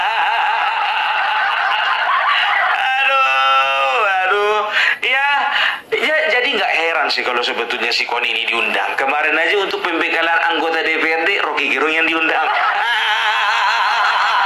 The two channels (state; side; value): identical; both; correlation 1.00